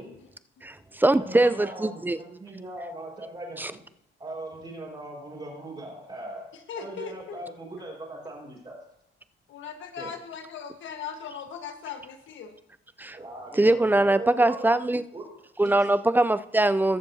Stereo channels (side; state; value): both; normal; correlation 0.87